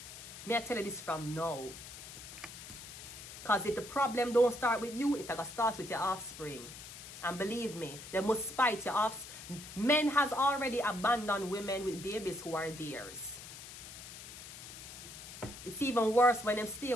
May I tell you this from now? Because if the problem don't start with you, it's gonna start with your offspring. And believe me, they must spite your offspring. Men has already abandoned women with babies who are theirs. It's even worse when them stay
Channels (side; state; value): left; noise; hiss, 13 dB below the sound